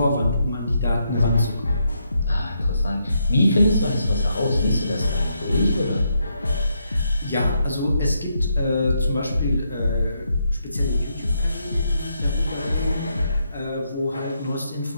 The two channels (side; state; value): both; inverted; correlation -0.79